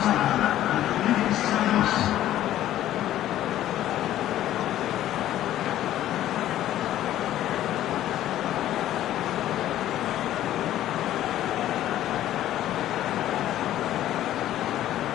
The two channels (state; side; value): quieter; right; 12.9 dB